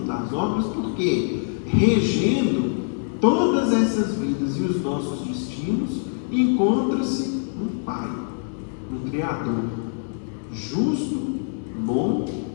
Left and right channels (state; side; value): silent; right; digital silence